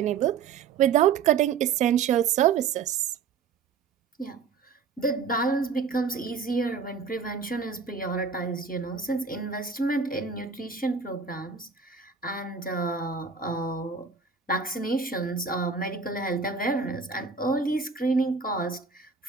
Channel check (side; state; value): left; quieter; 5.7 dB